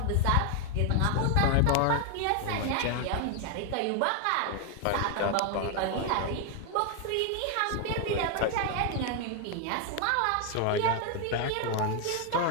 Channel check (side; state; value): both; different; correlation 0.00